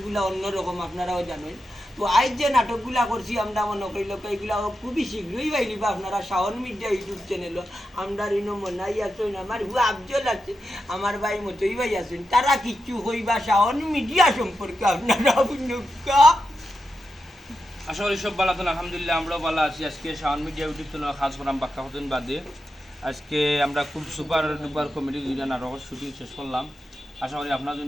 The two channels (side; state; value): both; normal; correlation 0.89